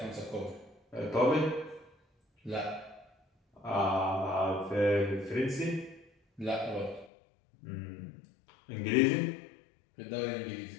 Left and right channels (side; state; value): right; drops out; at 7.1 s